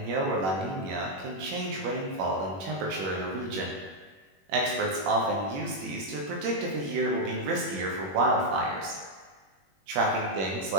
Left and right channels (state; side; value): late; left; 21 ms